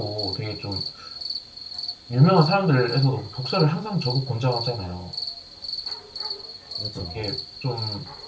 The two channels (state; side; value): identical; both; correlation 1.00